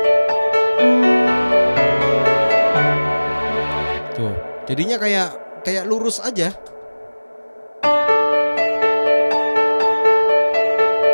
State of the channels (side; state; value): both; inverted; correlation -1.00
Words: Tuh, jadinya kayak lurus aja.